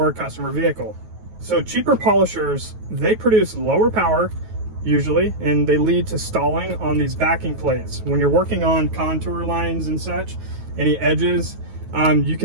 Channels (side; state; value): left; late; 9.3 ms